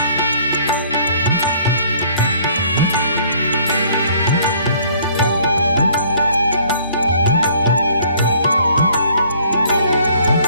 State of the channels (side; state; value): both; inverted; correlation -0.58